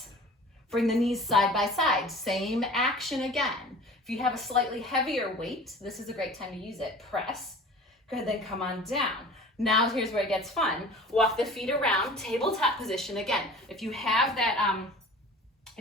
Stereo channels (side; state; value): both; normal; correlation 0.42